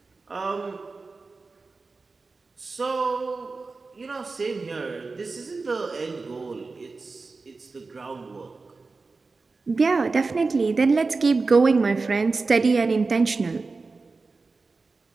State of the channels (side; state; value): left; quieter; 4.0 dB